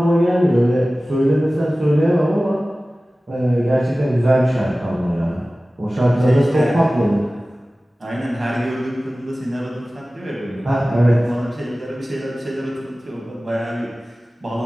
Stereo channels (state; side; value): normal; both; correlation 0.97